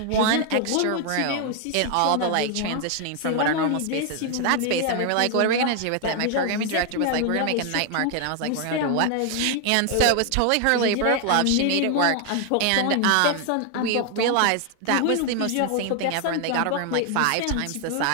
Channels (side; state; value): both; different; correlation 0.00